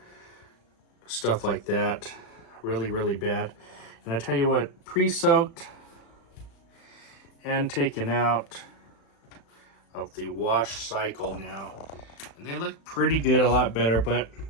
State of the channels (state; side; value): late; right; 36 ms